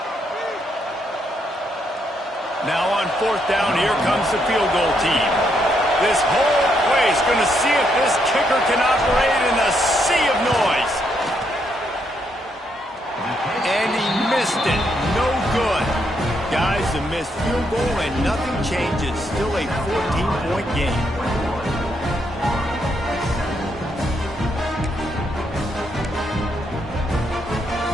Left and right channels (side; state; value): both; normal; correlation 0.76